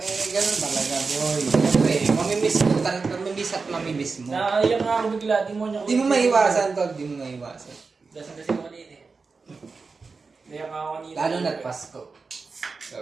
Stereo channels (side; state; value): left; quieter; 4.5 dB